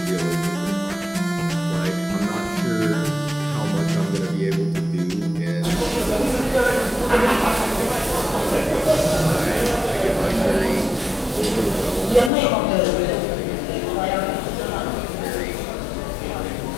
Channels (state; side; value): drops out; right; at 12.3 s